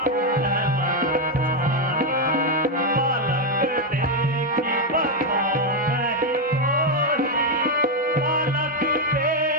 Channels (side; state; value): both; normal; correlation 0.04